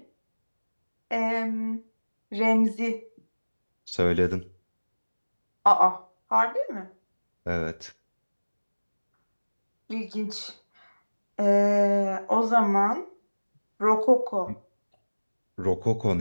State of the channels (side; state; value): both; inverted; correlation -1.00